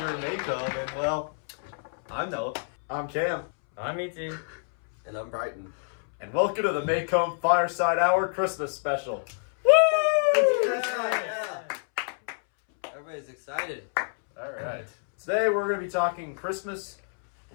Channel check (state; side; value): silent; right; 60 dB below the other